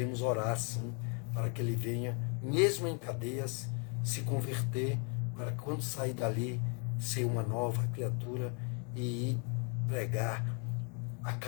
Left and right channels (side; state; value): right; quieter; 37.0 dB